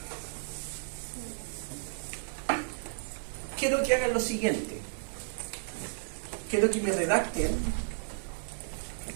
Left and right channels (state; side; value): silent; left; digital silence